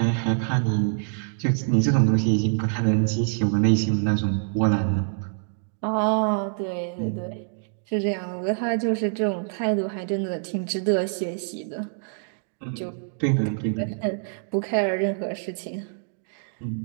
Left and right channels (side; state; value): left; silent; digital silence